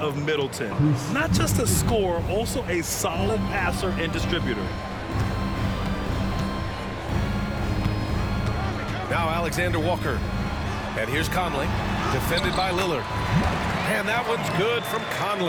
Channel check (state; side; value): identical; both; correlation 1.00